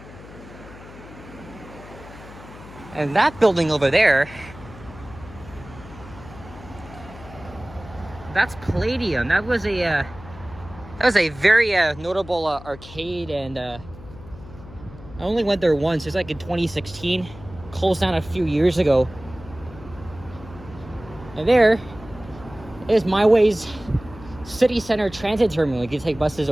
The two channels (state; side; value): noise; left; hum, 17 dB below the sound